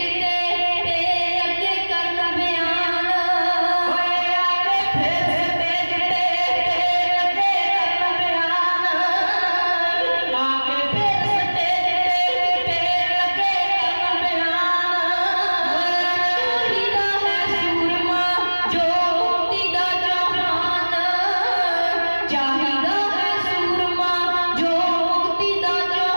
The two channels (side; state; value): both; inverted; correlation -1.00